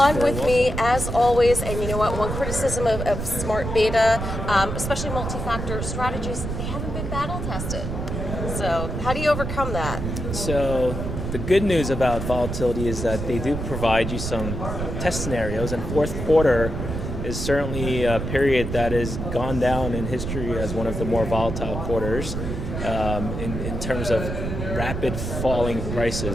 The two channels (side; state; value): right; noise; rumble, 4 dB below the sound